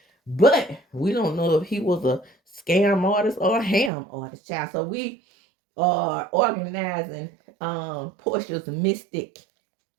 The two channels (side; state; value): left; drops out; at 3.9 s